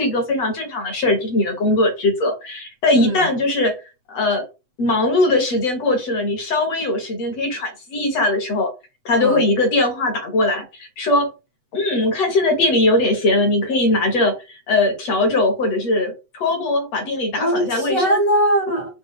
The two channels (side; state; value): right; late; 8.0 ms